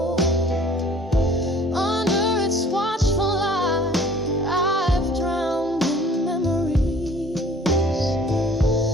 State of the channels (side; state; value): both; normal; correlation 0.52